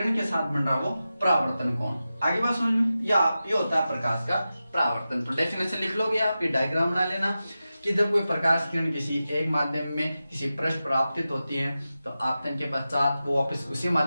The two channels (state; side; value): inverted; both; correlation -0.93